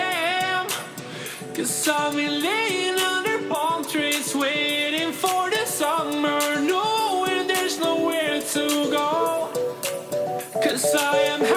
am. 'Cause I've been laying under palm trees, waiting for the summer, knowing there's nowhere to go. 'Cause I am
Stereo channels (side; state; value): both; identical; correlation 1.00